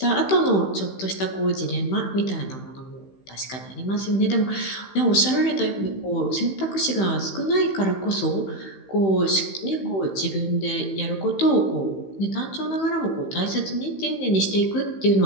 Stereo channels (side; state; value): right; late; 15 ms